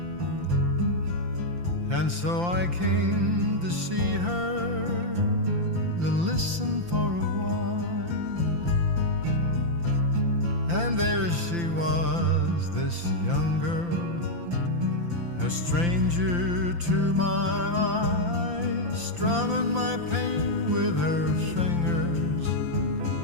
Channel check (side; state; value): left; late; 5.8 ms